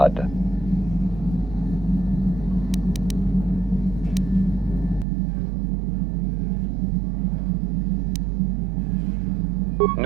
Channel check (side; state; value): left; drops out; at 5.1 s